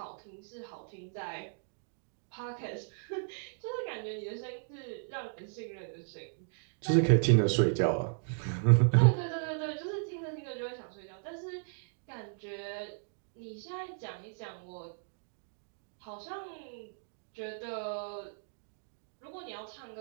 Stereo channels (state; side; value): silent; left; digital silence